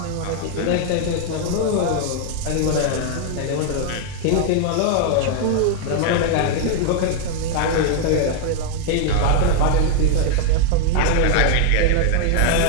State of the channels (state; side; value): different; both; correlation 0.00